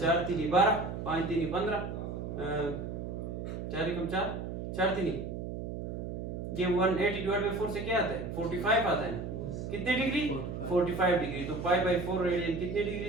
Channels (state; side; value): noise; right; hum, 6 dB below the sound